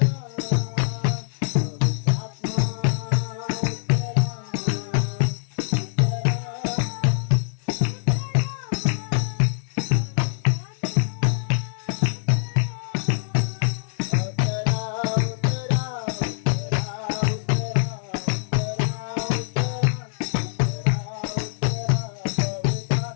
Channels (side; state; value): right; silent; digital silence